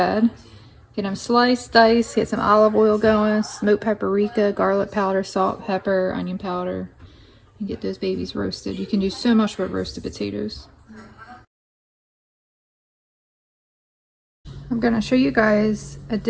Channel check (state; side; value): identical; both; correlation 1.00